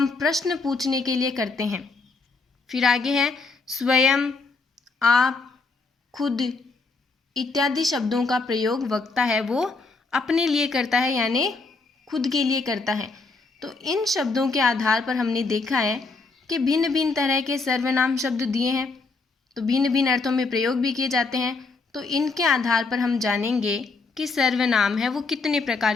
प्रश्न पूछने के लिए करते हैं। फिर आगे है स्वयं, आप, खुद इत्यादि शब्दों का प्रयोग वक्ता है वो अपने लिए करता है, यानी खुद के लिए करता है। तो इन शब्दों के आधार पर हमने देखा है कि भिन्न भिन्न तरह के सर्वनाम शब्द दिए हैं, तो भिन्न भिन्न अर्थों में प्रयोग भी किए जाते हैं। तो इनके आधार पर हम जानेंगे कि सर्वनाम है वो कितने प्रकार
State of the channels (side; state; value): right; quieter; 3.9 dB